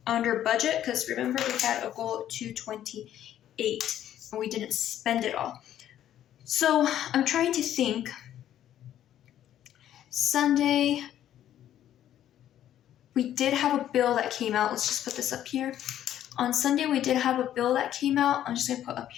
under budget because remember we had a goal of 228 and we didn't spend it all. So I'm trying to think. Sunday, we did have a bill that came out. Let's just put this up here. On Sunday, we did have a bill that came out. I'm just going to put up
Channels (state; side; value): quieter; right; 11.4 dB